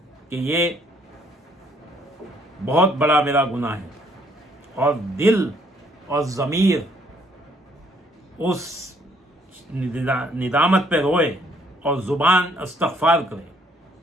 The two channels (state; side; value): normal; both; correlation 0.65